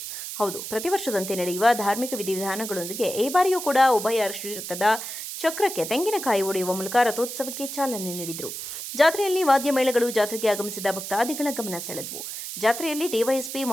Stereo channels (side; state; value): right; noise; hiss, 7 dB below the sound